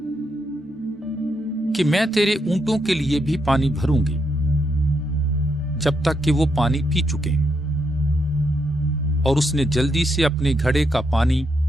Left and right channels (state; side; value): normal; both; correlation 0.79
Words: कि मैं तेरे ऊंटों के लिए भी पानी भरूंगी जब तक कि वो पानी पी चुके। और उसने जल्दी से अपने घड़े का पानी